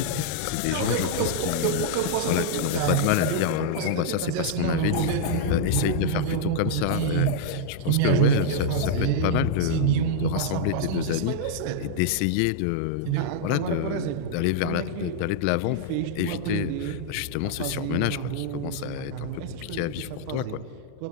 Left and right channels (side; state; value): both; different; correlation -0.01